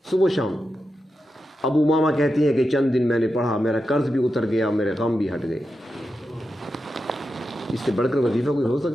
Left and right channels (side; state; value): both; normal; correlation 0.89